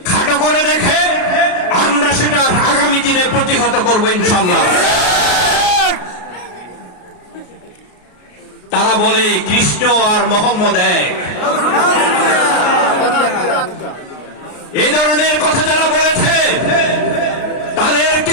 খাটো করে দেখে আমরা সেটা আগামী দিনে প্রতিহত করবো ইনশাল্লাহ। তারা বলে কৃষ্ণ আর মোহাম্মদ এক, এই ধরনের কথা যারা বলেছে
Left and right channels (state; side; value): late; right; 33 ms